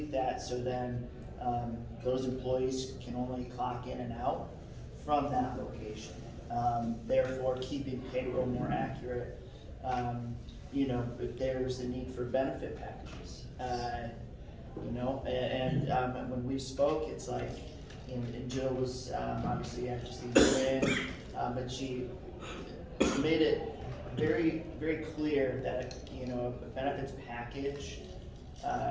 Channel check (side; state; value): both; identical; correlation 1.00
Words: that so then those employees can only clock in and out from that location. Therefore, keeping payroll more accurate. If there's a need for benefit packages, and when we spoke, it's like, and Jill was obviously just a year in, but she made it very, very clear that a benefits package